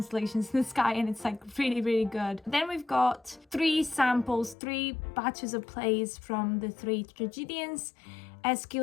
in the sky, and it's like really, really good. Then we've got 3 samples, 3 batches of plays from the 3 tragedians:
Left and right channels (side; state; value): right; drops out; at 4.5 s